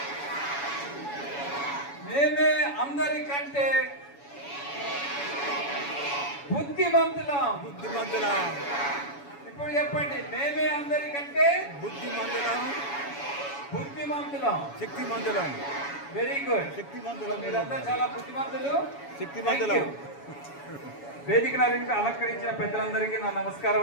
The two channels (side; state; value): right; late; 7.1 ms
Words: మేమే అందరికంటే బుద్ధిమంతులం. ఇప్పుడు చెప్పండి, మేమే అందరికంటే బుద్ధిమంతులం, శక్తిమంతులం. Very good, శక్తిమంతులం. మీరంతా చాలా బుద్ధిమంతులు, శక్తిమంతులం. వేదిక అలంకరించిన పెద్దలందరికీ నా నమస్కారం